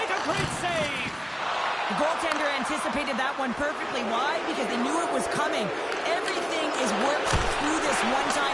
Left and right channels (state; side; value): identical; both; correlation 1.00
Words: a great save. The goaltender anticipated that one perfectly. Why? Because they knew it was coming. Everything is worked through this